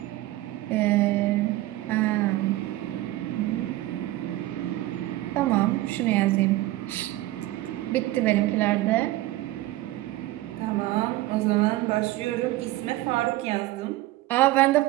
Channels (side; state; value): left; quieter; 17.0 dB